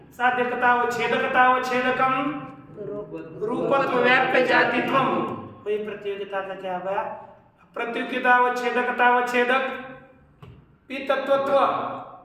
साध्यतावच्छेदकतावच्छेदकम रूपत्व व्याप्य जातित्वम। कोई प्रतियोगिता का क्या होगा? प्रतियोगितावच्छेदकतावच्छेदक पीतत्वत्व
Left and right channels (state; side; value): identical; both; correlation 1.00